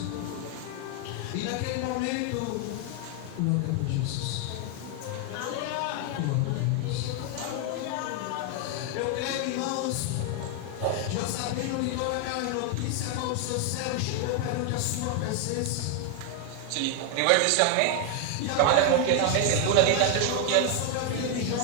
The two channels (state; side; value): different; both; correlation 0.01